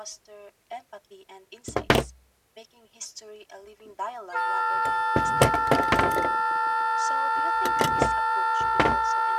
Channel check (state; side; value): identical; both; correlation 1.00